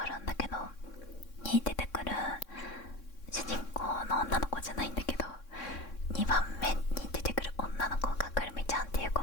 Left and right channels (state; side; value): late; right; 3.6 ms